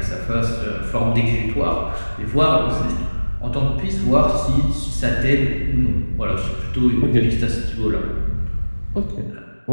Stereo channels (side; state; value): both; inverted; correlation -1.00